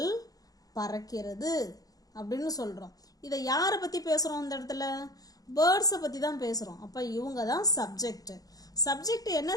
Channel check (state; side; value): late; right; 0.18 ms